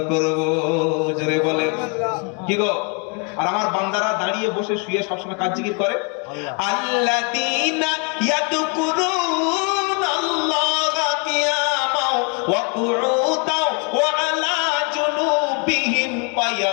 করব। জোরে বলেন কি গো? আর আমার বান্দারা দাঁড়িয়ে বসে শুয়ে সবসময় কাজ জিকির করে। আল্লাযীনা ইয়াযকুরুনা আল্লাহা কিয়ামান ওয়া কুউদান ওয়া আলা জুনুবিহিম ওয়া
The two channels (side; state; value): right; quieter; 34.8 dB